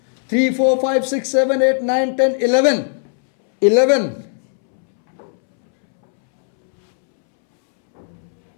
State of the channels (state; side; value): silent; right; 68 dB below the other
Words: 3, 4, 5, 6, 7, 8, 9, 10, 11. 11.